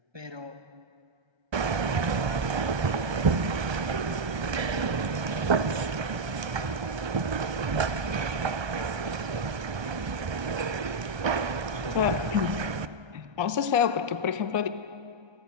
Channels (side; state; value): left; late; 1.3 ms